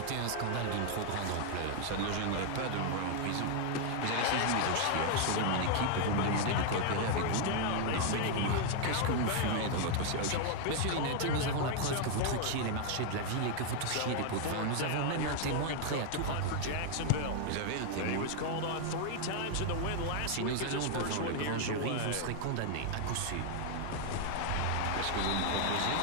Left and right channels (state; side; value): different; both; correlation 0.00